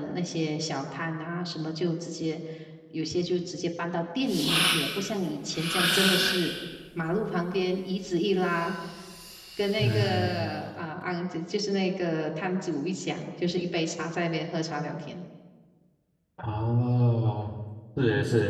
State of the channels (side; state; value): both; identical; correlation 1.00